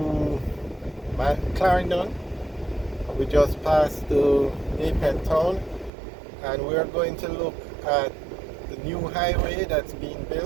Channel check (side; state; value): left; drops out; at 5.9 s